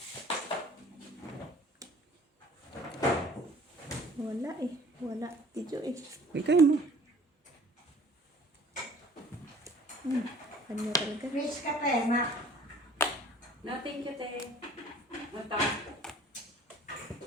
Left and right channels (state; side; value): normal; both; correlation 0.49